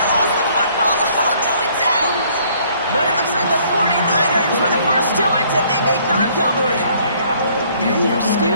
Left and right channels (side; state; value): both; inverted; correlation -0.62